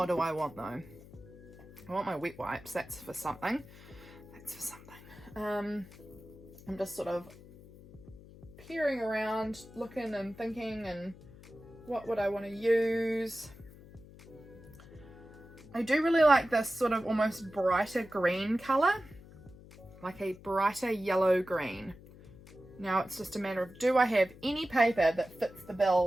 do I want though? I want my wet wipes. That's for something. That's for something. I'm just sort of peering around, looking and thinking, and what would I want to use? I do really like this sort of almost brighter green colour, like a brighter yellow green. Now it's just a matter of, do I have any paper that fits the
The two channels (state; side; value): noise; left; hum, 20 dB below the sound